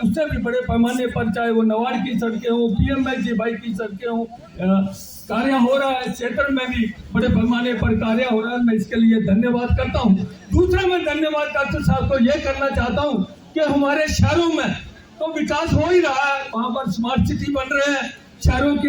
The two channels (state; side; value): identical; both; correlation 1.00